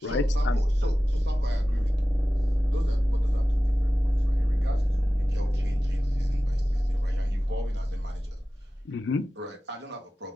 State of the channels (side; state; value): both; normal; correlation 0.95